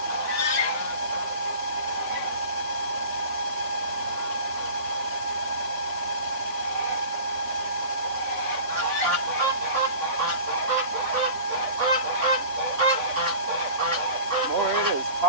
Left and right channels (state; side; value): late; left; 3.6 ms